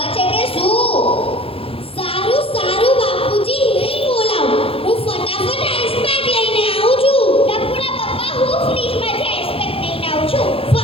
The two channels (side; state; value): right; late; 0.27 ms